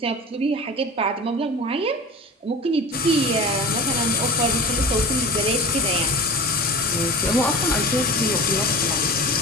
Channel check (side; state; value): both; normal; correlation 0.33